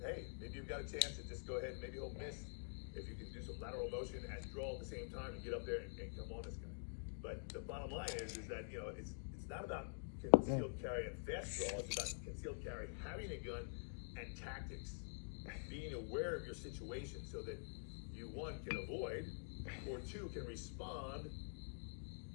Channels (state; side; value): silent; right; digital silence